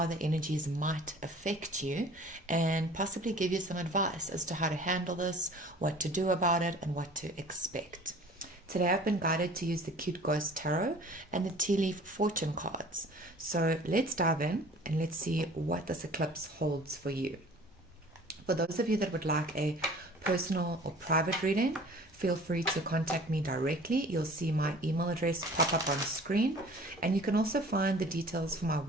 the energies might affect you and possibly give you some advice as to how to handle this, what to do about it, and what to expect. Today I've been guided to use the Cute Ghost Tarot and the Tea Leaf Fortune cards. So let's dive in and let's see what this eclipse holds for you. For those of you that would like a personal or private reading, feel free to contact me directly. You'll see my email address pop up on screen, and you can also find the details for my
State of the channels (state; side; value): normal; both; correlation 0.47